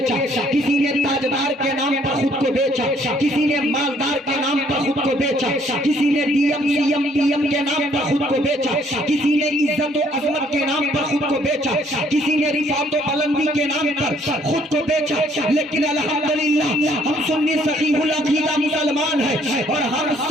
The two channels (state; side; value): normal; both; correlation 0.64